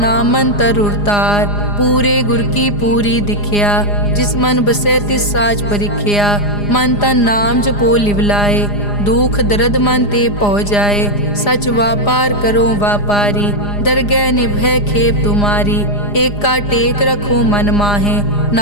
अंतर उरतार। पूरे गुर की पूरी दिखिया, जिस मन बसे तिस साज परिख्या। मन तन नाम जपो लिवलाए, दुख दर्द मन ते पौ जाए। सच व्यापार करो व्यापारी, दरगह निभय खेप तुम्हारी। एक का टेक रखो मन माहे,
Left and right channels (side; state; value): right; late; 4.9 ms